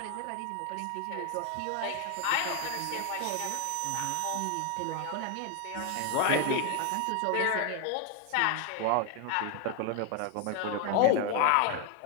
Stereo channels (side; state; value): both; different; correlation 0.01